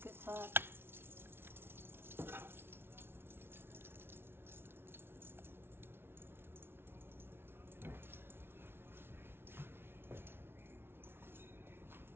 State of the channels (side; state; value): left; late; 0.11 ms